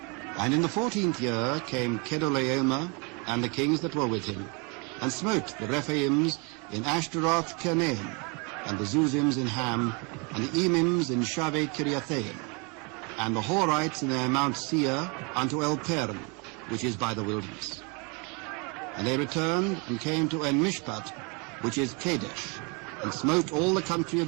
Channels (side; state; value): left; quieter; 31.8 dB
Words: And in the 14th year came Chedorlaomer and the kings that were with him, and smote the Rephaims in Ashteroth Karnaim, and the Zuzims in Ham, and the Emims in Shaveh Kiriathaim, and the Horites in their Mount Seir unto Elparan, which is by the wilderness. And they returned and came to Enmishpat, which is Kadesh, and smote all the country of